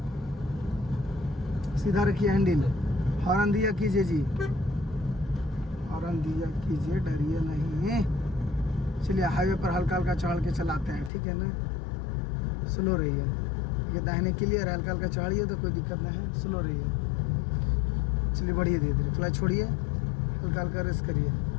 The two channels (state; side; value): drops out; right; at 11.1 s